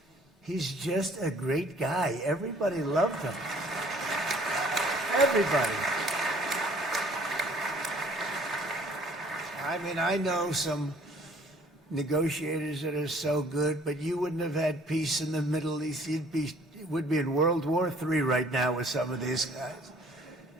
he's just a great guy. Everybody loved him. Everybody. I mean, I know some negotiators that are so good, but you wouldn't have had peace in the Middle East. Would be in World War III right now with some of these guys.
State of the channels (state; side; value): normal; both; correlation 0.56